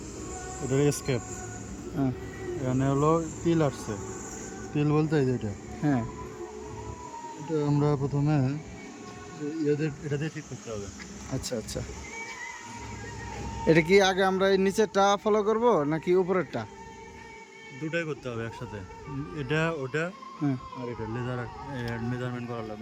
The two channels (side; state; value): both; identical; correlation 1.00